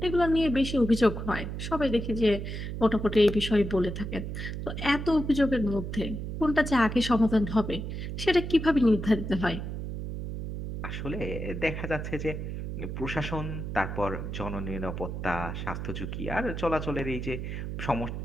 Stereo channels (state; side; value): noise; right; hum, 5 dB below the sound